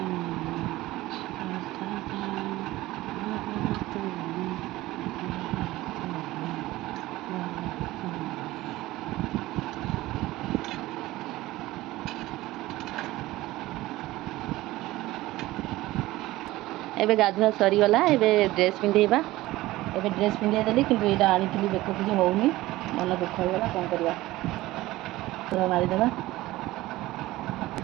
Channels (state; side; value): quieter; left; 17.7 dB